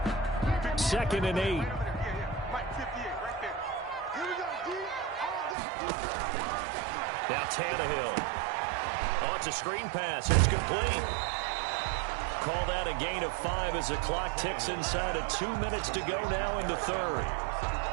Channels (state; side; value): drops out; left; at 5.6 s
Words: 2nd and 8. Now Tannehill. Oh, it's a screen pass. It's complete. Call that a gain of 5 as the clock ticks inside of 2 minutes to go now in the 3rd.